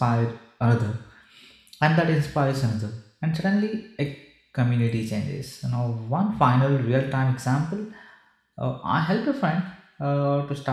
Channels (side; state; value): both; identical; correlation 1.00